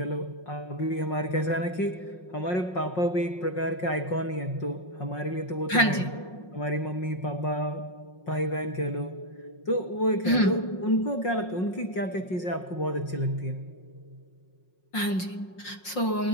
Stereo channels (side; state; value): right; late; 5.5 ms